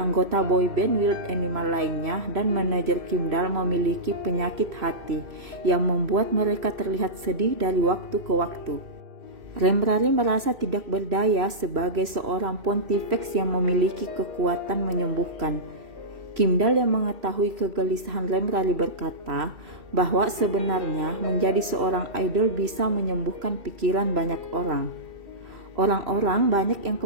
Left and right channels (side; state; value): left; late; 2.7 ms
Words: boyband Wild Animal lainnya dan manajer Kimdal memiliki penyakit hati yang membuat mereka terlihat sedih dari waktu ke waktu. Remrari merasa tidak berdaya sebagai seorang Pontifex yang memiliki kekuatan menyembuhkan. Kimdal yang mengetahui kegelisahan Remrari berkata bahwa sebenarnya menjadi seorang idol bisa menyembuhkan pikiran banyak orang. Orang-orang banyak yang